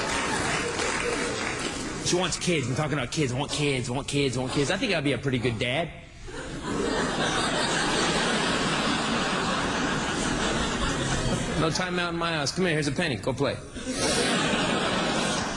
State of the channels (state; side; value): identical; both; correlation 1.00